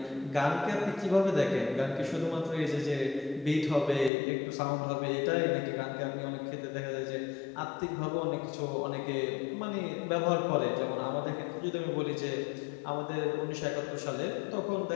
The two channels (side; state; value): right; drops out; at 4.1 s